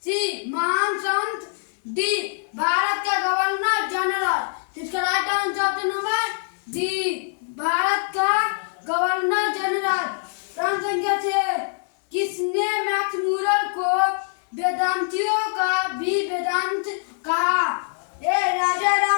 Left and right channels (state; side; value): silent; right; 63 dB below the other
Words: सी महान संत, डी भारत के गवर्नर जनरल। इसका right answer number D Bharat का गवर्नर जनरल। प्रश्न संख्या 6, किसने मैक्स मूलर को वेदांतियों का भी वेदांत कहा? ए राजा